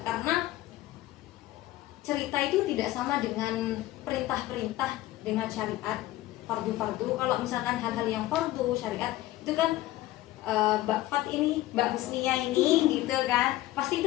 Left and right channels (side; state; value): right; quieter; 16.1 dB